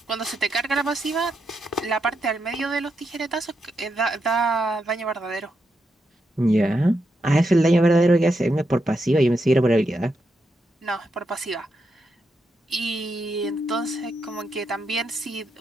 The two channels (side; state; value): both; normal; correlation 0.83